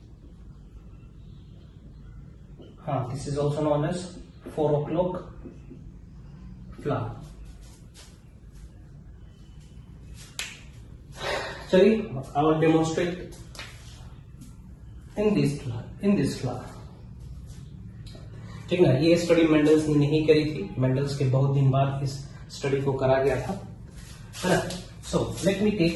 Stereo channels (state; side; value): identical; both; correlation 1.00